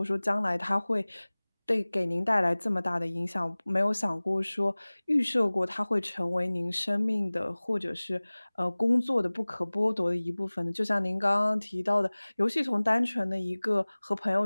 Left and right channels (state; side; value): inverted; both; correlation -1.00